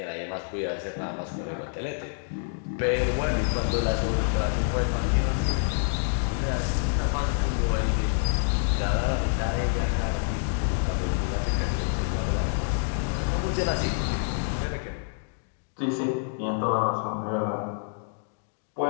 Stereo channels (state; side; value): silent; right; 60 dB below the other